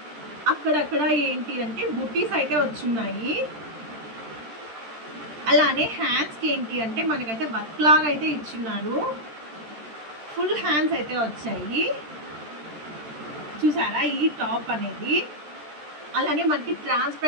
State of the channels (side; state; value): left; late; 13 ms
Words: అక్కడక్కడ ఏంటి అంటే బుటీస్ అయితే వచ్చున్నాయి. అలానే హ్యాండ్స్కి ఏంటి అంటే మనకైతే వర్క్ లాగా అయితే ఇచ్చున్నారు. ఫుల్ హ్యాండ్స్ అయితే వచ్చాయి, చూసారా ఈ టాప్ అనేది. అలానే మనకి